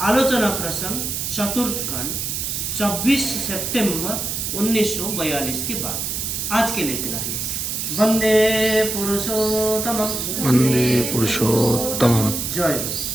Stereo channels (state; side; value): noise; right; hiss, 3 dB below the sound